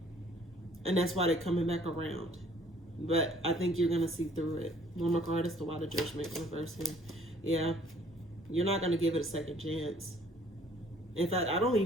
And that's why they're coming back around. But I think you're going to see through it. One more card is the Why the Judgment reverse here. Yeah. You're not going to give it a second chance. In fact, I don't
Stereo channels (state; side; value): normal; both; correlation 0.58